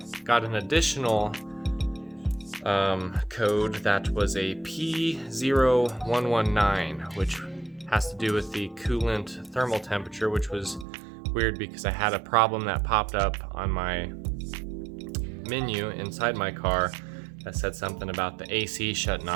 got an additional code that was a P0119, which has to do with the coolant thermal temperature, which was weird because I had a problem that popped up on my menu inside my car that said something about the AC shutting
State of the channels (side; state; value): left; drops out; at 10.9 s